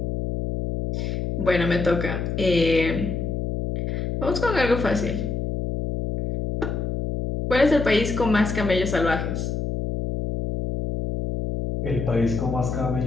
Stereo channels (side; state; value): left; noise; hum, 2 dB below the sound